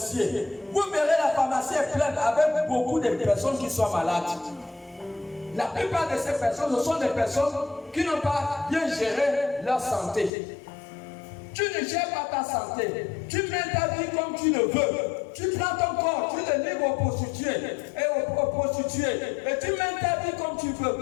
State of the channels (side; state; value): right; drops out; at 10.3 s